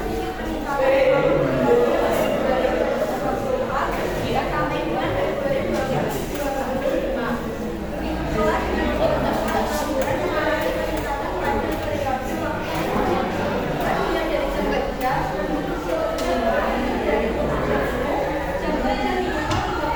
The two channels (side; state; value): both; identical; correlation 1.00